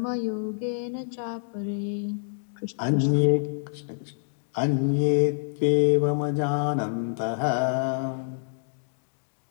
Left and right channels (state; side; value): silent; right; digital silence